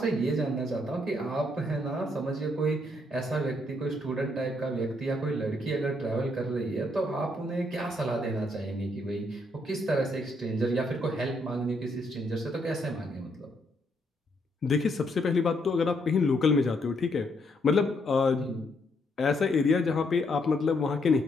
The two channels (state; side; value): normal; both; correlation 0.74